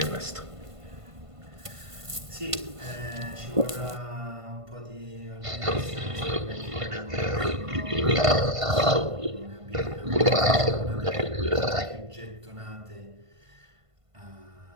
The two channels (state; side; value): late; left; 1.5 ms